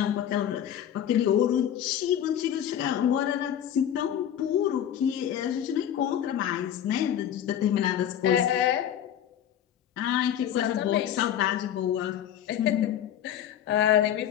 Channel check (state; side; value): quieter; right; 10.2 dB